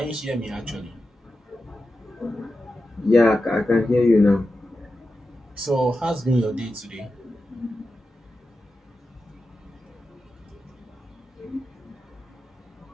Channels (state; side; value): normal; both; correlation 0.91